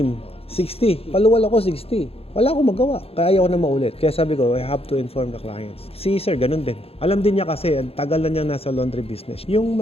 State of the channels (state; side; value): late; right; 0.28 ms